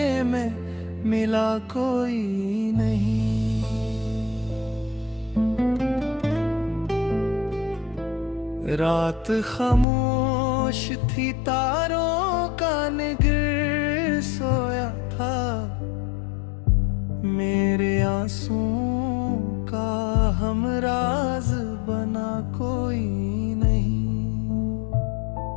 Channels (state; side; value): drops out; right; at 9.9 s